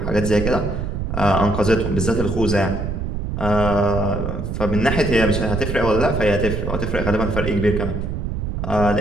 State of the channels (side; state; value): right; noise; rumble, 3 dB below the sound